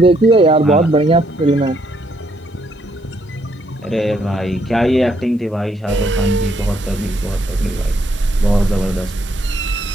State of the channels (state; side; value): normal; both; correlation 0.72